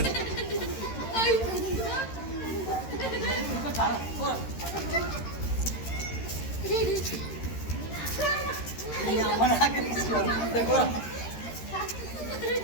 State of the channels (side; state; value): right; late; 13 ms